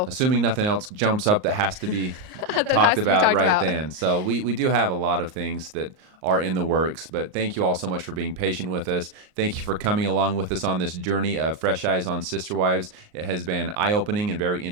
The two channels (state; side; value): late; left; 38 ms